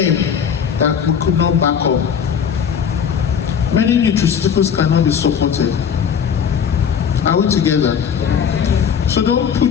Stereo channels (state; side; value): quieter; right; 7.5 dB